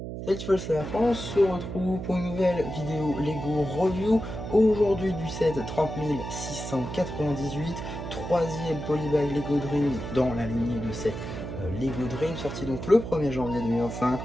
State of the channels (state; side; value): noise; right; hum, 7 dB below the sound